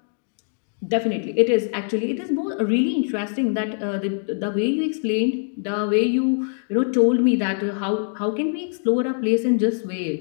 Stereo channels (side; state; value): right; silent; 63 dB below the other